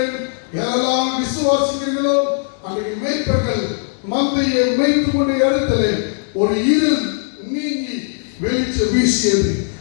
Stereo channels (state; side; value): silent; right; digital silence